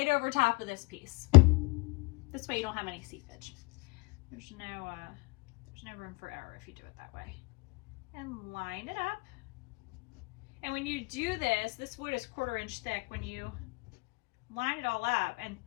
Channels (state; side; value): quieter; right; 27.0 dB